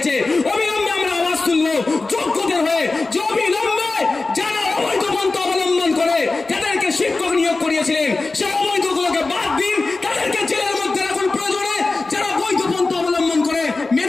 অবিলম্বে আমরা আওয়াজ তুলবো যোগ্যদের হয়ে, যে অবিলম্বে যারা অবৈধ পন্থা অবলম্বন করে তাদেরকে শিক্ষক নিয়োগ করিয়েছিলেন সেই অবৈধগুলোকে বাদ দিন, তাদেরকে জেলের মধ্যে রাখুন। প্রয়োজনে যারা বৈধ পন্থা অবলম্বন করে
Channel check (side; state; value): right; quieter; 3.5 dB